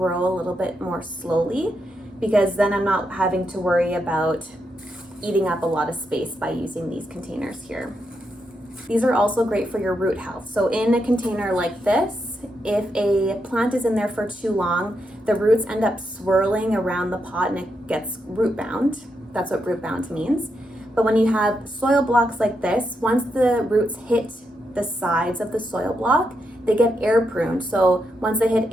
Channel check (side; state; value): both; normal; correlation 0.83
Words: a little bit more slowly, because then I'm not having to worry about eating up a lot of space by using these containers here. These are also great for your root health. So in a container like this, if a plant is in there for too long, the roots end up swirling around the pot and it gets root bound. That's what root bound means. But when you have soil blocks like this, once the roots hit the sides of the soil block, they get air pruned. So once they hit